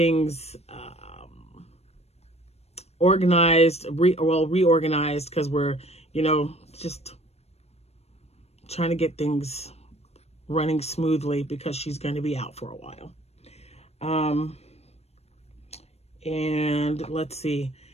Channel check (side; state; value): right; late; 0.31 ms